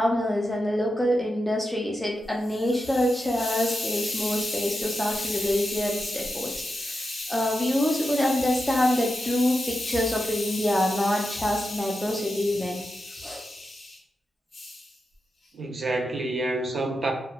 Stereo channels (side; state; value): both; normal; correlation 0.89